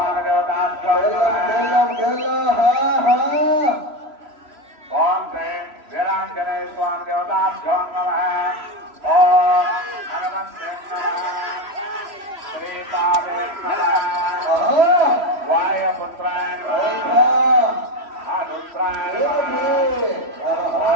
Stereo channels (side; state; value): left; late; 3.0 ms